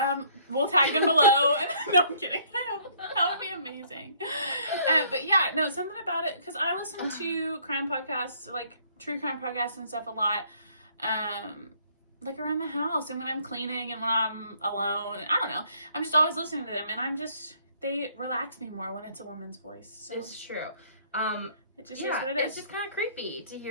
We'll tag them below. No, I'm kidding. That would be amazing. But yeah, no, something about it, because I listen to crime podcasts, like true crime podcasts and stuff a lot, like around the house and when I'm cleaning and when I'm alone. I don't know. I'm just always listening to them, and they relax me more when it's a woman's voice. So. It's true. It just is what it is. It's just kind of creepy to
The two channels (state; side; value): inverted; both; correlation -0.62